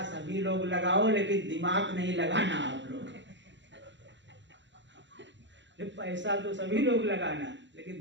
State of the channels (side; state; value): left; late; 0.53 ms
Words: सभी लोग लगाओ लेकिन दिमाग नहीं लगाना आप लोग। पैसा तो सभी लोग लगाना लेकिन